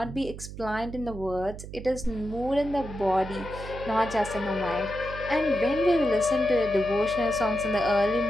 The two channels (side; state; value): right; noise; hum, 11 dB below the sound